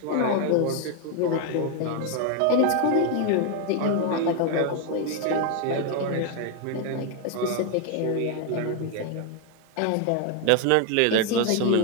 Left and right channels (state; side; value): different; both; correlation 0.01